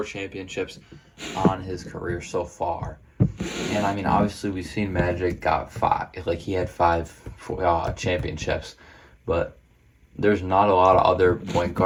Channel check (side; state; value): both; identical; correlation 1.00